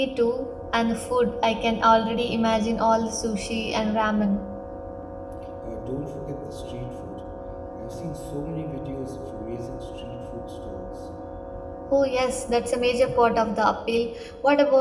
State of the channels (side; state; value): both; identical; correlation 1.00